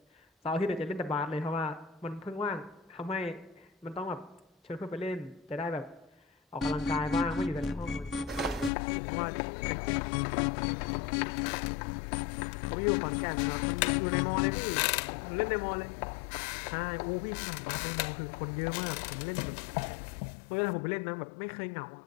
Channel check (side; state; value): right; drops out; at 8.7 s